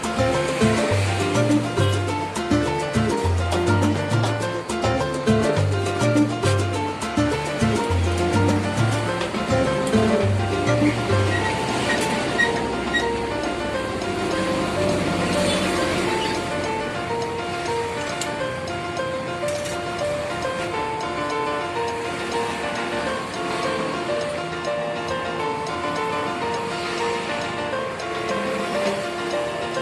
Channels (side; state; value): both; identical; correlation 1.00